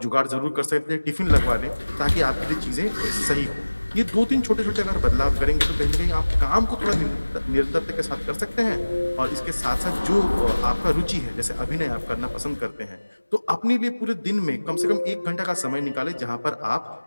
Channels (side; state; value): both; inverted; correlation -1.00